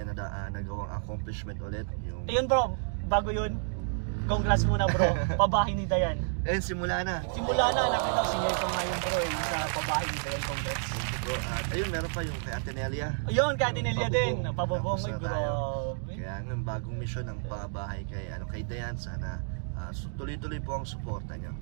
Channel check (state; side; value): silent; left; digital silence